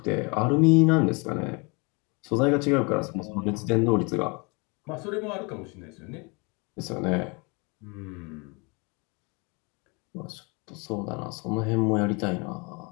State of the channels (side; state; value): right; quieter; 30.4 dB